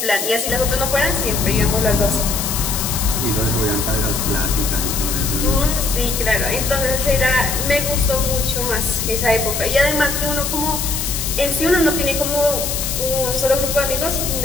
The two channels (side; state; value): left; noise; hiss, 3 dB below the sound